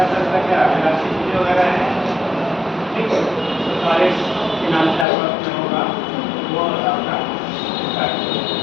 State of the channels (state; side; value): drops out; right; at 5.1 s